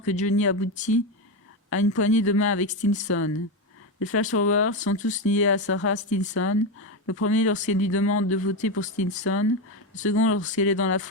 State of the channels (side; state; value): both; normal; correlation 0.12